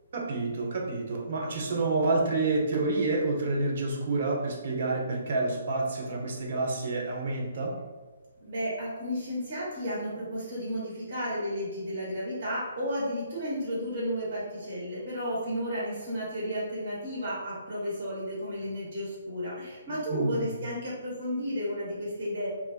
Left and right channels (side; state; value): both; inverted; correlation -0.64